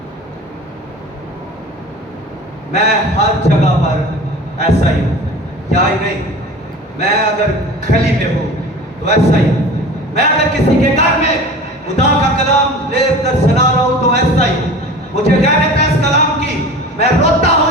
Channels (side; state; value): both; normal; correlation 0.38